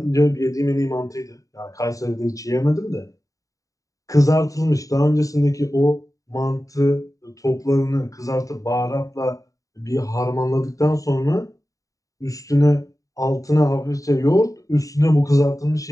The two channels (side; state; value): right; late; 0.16 ms